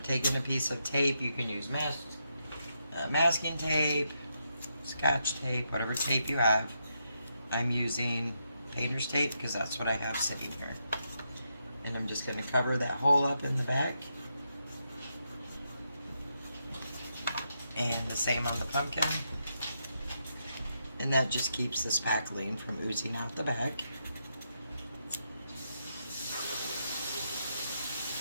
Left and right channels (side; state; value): both; inverted; correlation -0.82